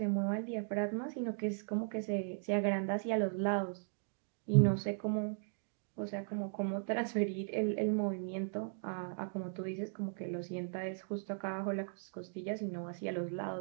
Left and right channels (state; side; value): silent; left; digital silence